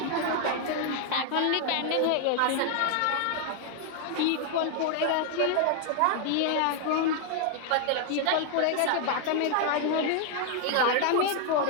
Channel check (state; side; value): different; both; correlation 0.00